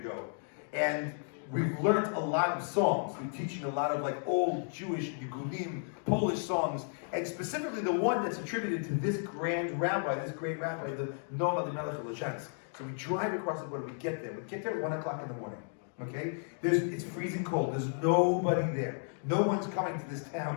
And we've learned a lot of songs. We're teaching a lot of like old Jewish, Yegudim, Polish songs. And specifically the one that's attributed to this grand rabbi, this great rabbi, the Noam Elimelech of Lezhensk. So we drive across the border, we get there. We get there at 1 o'clock in the morning. Okay? It's freezing cold. There's nobody there. No one's coming to this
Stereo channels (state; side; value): silent; right; 55 dB below the other